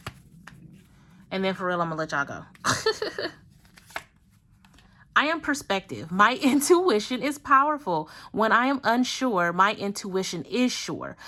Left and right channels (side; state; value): both; identical; correlation 1.00